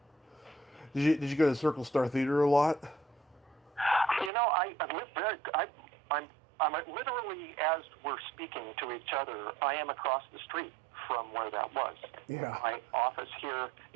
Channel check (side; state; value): left; drops out; at 4.3 s